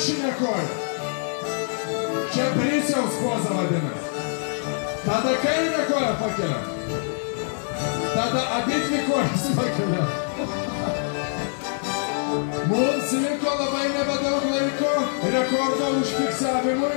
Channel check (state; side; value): silent; right; 62 dB below the other